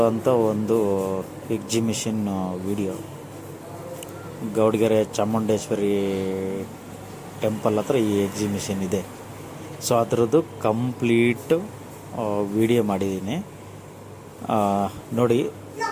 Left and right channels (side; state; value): both; identical; correlation 1.00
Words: ಒಂದು exhibition video. Gowdagere Chamundeshwari temple ಹತ್ರ ಈ ಎಕ್ಸಿಬಿಷನ್ ಇದೆ. ಸೊ ಅದರದ್ದು ಕಂಪ್ಲೀಟು ವಿಡಿಯೋ ಮಾಡಿದ್ದೀನಿ, ನೋಡಿ.